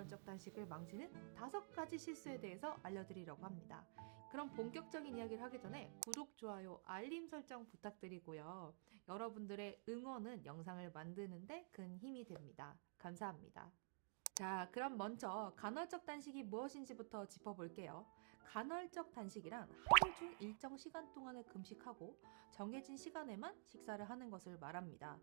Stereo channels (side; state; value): left; silent; digital silence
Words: 단식을 망치는 5가지 실수에 대해서 알려드리려고 합니다. 그럼 본격적인 이야기를 하기 전에 구독, 좋아요, 알림 설정 부탁드리고요. 여러분들의 응원은 영상을 만드는데 큰 힘이 됩니다. 감사합니다. 자, 그럼 먼저 간헐적 단식이 무엇인지부터 짚어볼게요. 간헐적 단식이란 하루 중 일정 시간 동안을 금식하고 정해진 시간에만 식사를 하는 것을 말합니다.